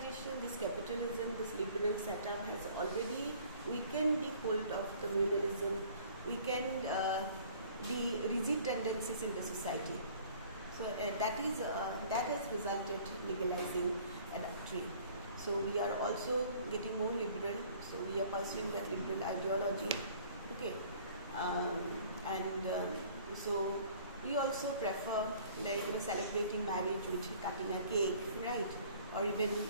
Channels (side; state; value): both; inverted; correlation -0.53